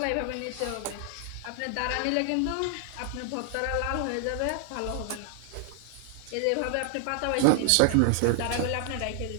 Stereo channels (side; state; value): both; different; correlation 0.00